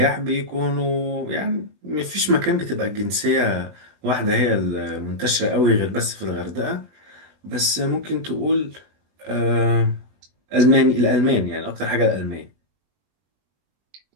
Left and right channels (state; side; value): late; left; 20 ms